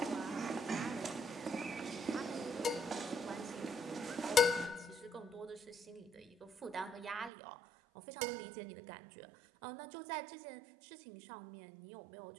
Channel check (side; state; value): left; drops out; at 7.3 s